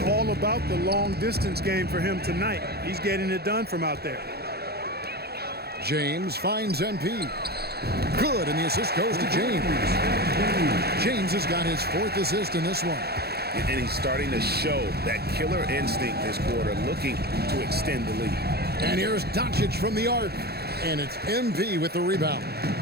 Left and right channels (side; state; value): left; late; 0.46 ms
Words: all about the long distance game for him tonight. He's getting it done from out there. James finds MP. Good, and the assist goes to James. James has got his 4th assist in this one. And he's starting to show that killer instinct this quarter, looking to extend the lead. And here's Doncic from the arc. And it's MP with the rebound.